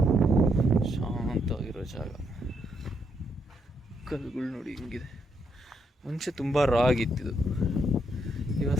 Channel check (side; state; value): both; normal; correlation 0.76